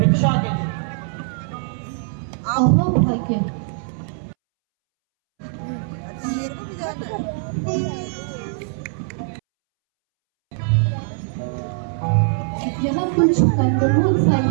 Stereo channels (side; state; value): left; silent; 64 dB below the other